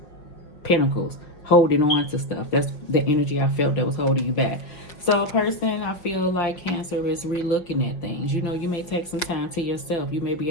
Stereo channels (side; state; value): right; late; 5.6 ms